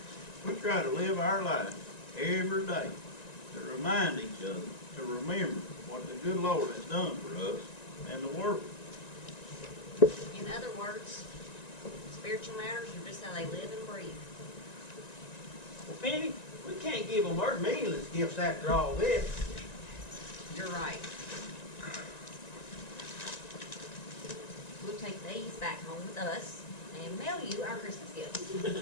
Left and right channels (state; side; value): late; right; 1.9 ms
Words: we try to live our life every day to remind each other to remember what the good Lord has done for us and the world. In other words, spiritual matters are just how they live and breathe. Well, Penny, we can't give them our meaningless gifts after all this. You're right. We'll take these back home with us and mail you our Christmas gifts.